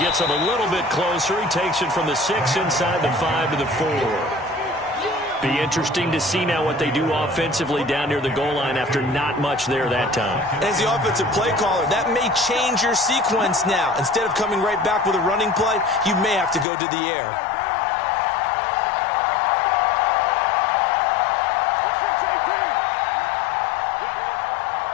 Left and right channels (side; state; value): right; drops out; at 16.7 s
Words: gets him a little bit closer. He takes it from the 6 inside the 5 to the 4. Be interesting to see now what they do offensively down near the goal line after not much there that time. As the offensive play caller, that may change your sequence now. Instead of coming right back with a running play, you may have to go to the air.